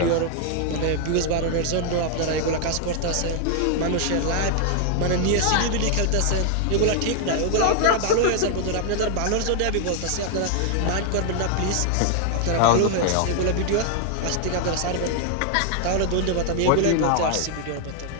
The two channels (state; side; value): different; both; correlation 0.00